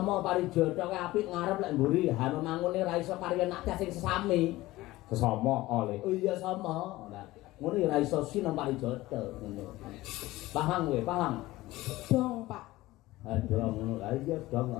parijata ki apik ngarep lek mburi hanu mangune ra iso kari anak sing sesami. Sesama oleh. Oh iya sama. Ora ngono ya ra iso sinama parijata ngono. Paham kowe, paham? Dong, Pak. Dong ngono. Lah iya dong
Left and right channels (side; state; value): right; quieter; 18.0 dB